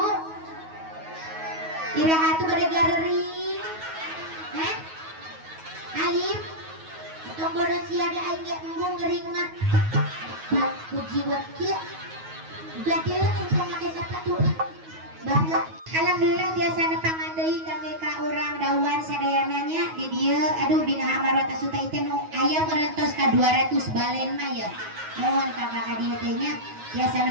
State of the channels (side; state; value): left; late; 9.4 ms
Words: Iraha tuh bade galeri. Heh? Alim. Tong bodo sia da aing ge embung gering mah. Puji buat kieu. Gade engkong make sapatu. Bangga. Alhamdulillah biasa nepangan deui kangge ka urang dawan sadayananya di dieu. Aduh bina amarot asuta teh nu aya merentos ka 200 balen mah ya. Mohon kakak ka dieu teh nya biasa